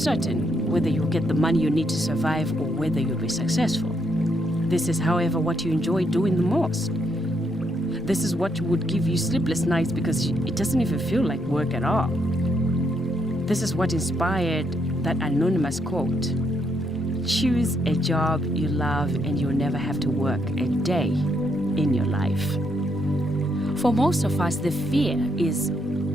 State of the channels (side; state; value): both; normal; correlation 0.76